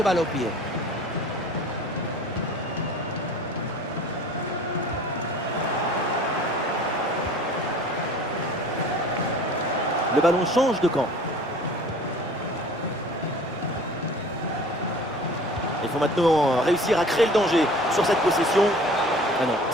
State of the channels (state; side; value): normal; both; correlation 0.46